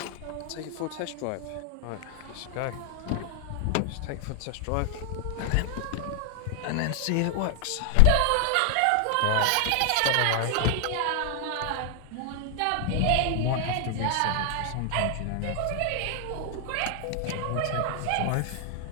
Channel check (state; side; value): different; both; correlation 0.00